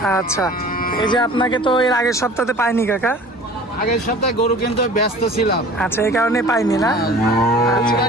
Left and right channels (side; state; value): both; normal; correlation 0.44